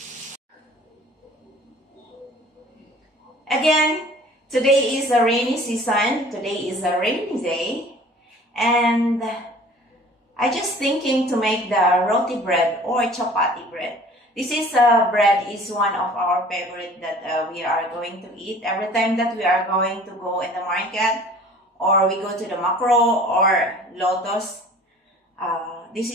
Again, today is a rainy season. Today is a rainy day. And I just thinking to make the roti bread or chapati bread. This is bread is one of our favorite that we are going to eat every time that we are going to go in the market or we go to the Macro or Lotus. This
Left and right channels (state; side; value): normal; both; correlation 0.48